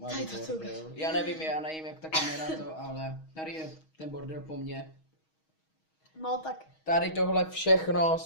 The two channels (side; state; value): right; late; 6.3 ms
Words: Tady to bordel. Já nevím, jak ta kamera to, ale tady je ten bordel po mně. No tak, Tady tohle všechno